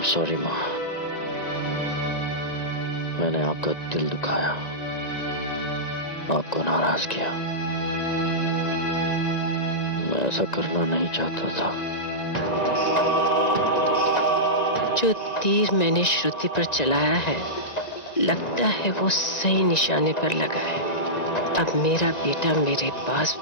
sorry माँ, मैंने आपका दिल दुखाया, आपको नाराज किया। मैं ऐसा करना नहीं चाहता था। जो तीर मैंने श्रुति पर चलाया है, लगता है वो सही निशाने पर लगा है। अब मेरा बेटा मेरे पास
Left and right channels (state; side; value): late; right; 1.9 ms